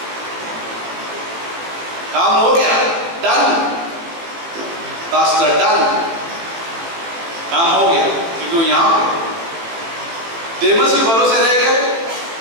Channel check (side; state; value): left; late; 18 ms